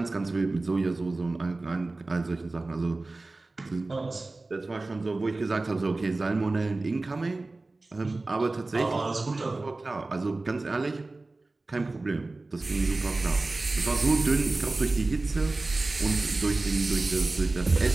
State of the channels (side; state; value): left; quieter; 3.2 dB